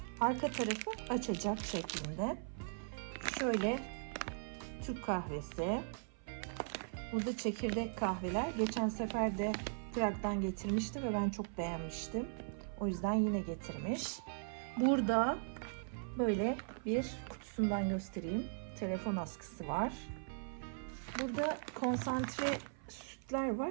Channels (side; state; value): left; silent; 52 dB below the other